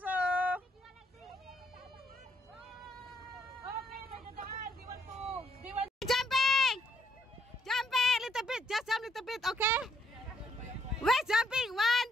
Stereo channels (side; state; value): both; normal; correlation 0.71